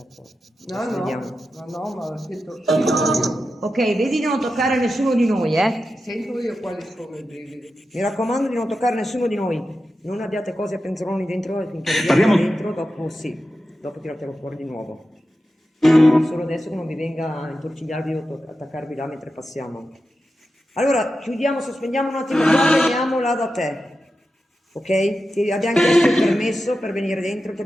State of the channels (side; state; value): both; normal; correlation 0.91